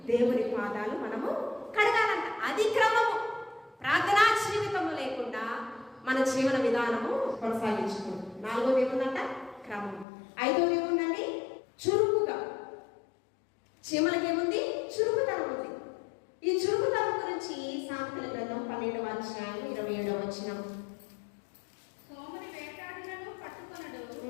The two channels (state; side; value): drops out; right; at 10.1 s